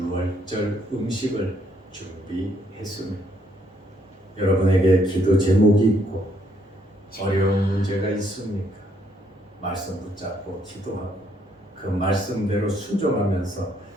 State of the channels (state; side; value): normal; both; correlation 0.70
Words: 음식을 준비했습니다. 여러분에게 기도 제목이 있고 어려운 문제가 있습니까? 말씀 붙잡고 기도하고 그 말씀대로 순종하면서